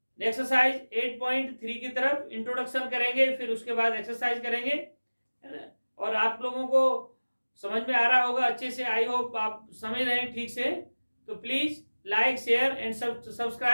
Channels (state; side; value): inverted; both; correlation -1.00